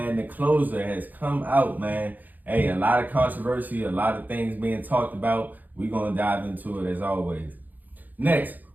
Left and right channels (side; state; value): left; late; 0.084 ms